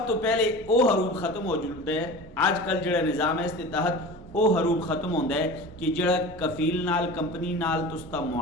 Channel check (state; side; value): normal; both; correlation 0.34